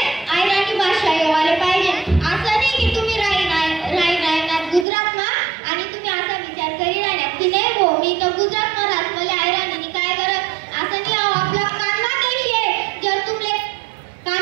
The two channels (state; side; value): drops out; left; at 4.9 s